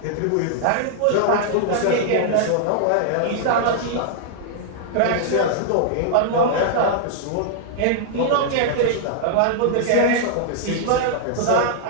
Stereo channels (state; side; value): different; both; correlation -0.01